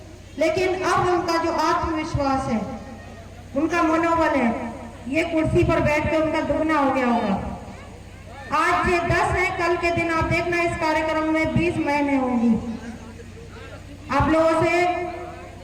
लेकिन अब उनका जो आत्मविश्वास है, उनका मनोबल है, ये कुर्सी पर बैठकर उनका दुगना हो गया होगा। आज ये 10 है, कल के दिन आप देखना इस कार्यक्रम में 20 महीने होंगी। आप लोगों से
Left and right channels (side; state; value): both; identical; correlation 1.00